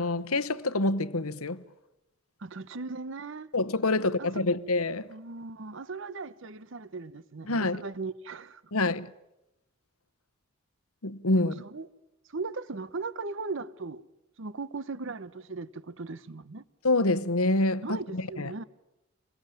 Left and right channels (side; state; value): both; normal; correlation -0.01